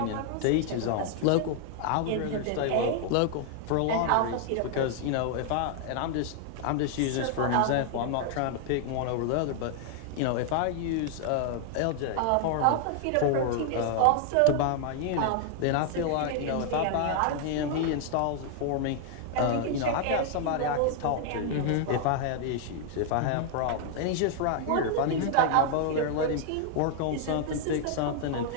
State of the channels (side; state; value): both; different; correlation 0.00